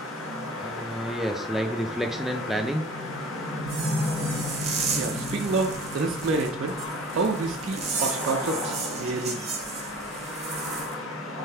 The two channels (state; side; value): normal; both; correlation 0.43